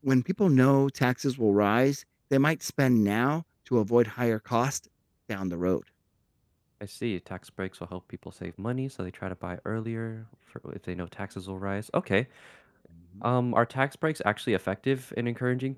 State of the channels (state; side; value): identical; both; correlation 1.00